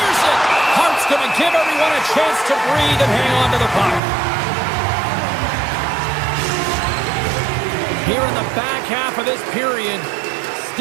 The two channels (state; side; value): drops out; left; at 4.0 s